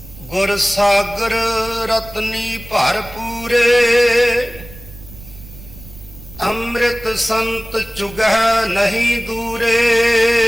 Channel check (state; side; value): noise; right; rumble, 18 dB below the sound